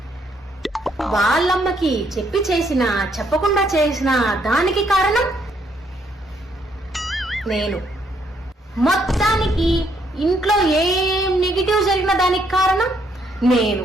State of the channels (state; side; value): normal; both; correlation 0.72